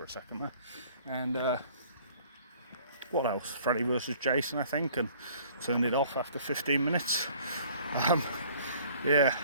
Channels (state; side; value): inverted; both; correlation -0.54